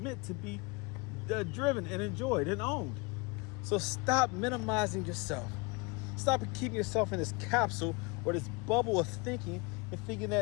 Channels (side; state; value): right; quieter; 27.6 dB